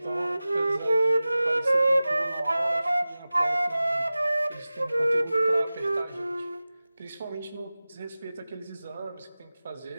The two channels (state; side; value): inverted; both; correlation -0.97